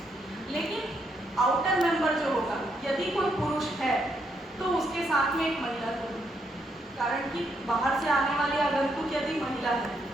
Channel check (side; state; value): both; normal; correlation 0.76